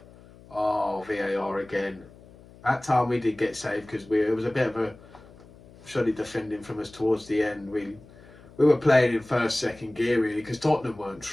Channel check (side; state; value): left; noise; hum, 23 dB below the sound